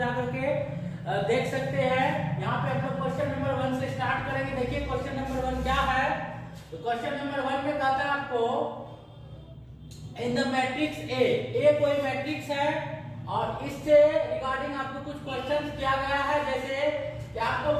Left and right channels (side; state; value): both; identical; correlation 1.00